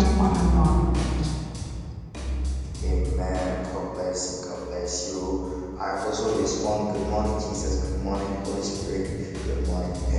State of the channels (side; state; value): both; identical; correlation 1.00